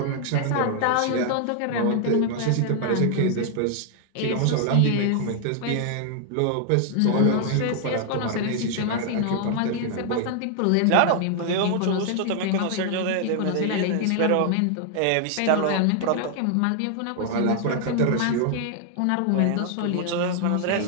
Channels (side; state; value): both; different; correlation 0.00